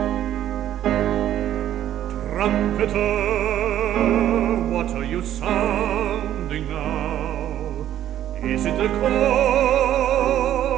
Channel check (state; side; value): quieter; left; 11.7 dB